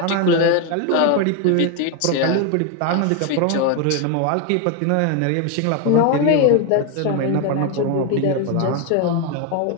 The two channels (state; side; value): different; both; correlation 0.01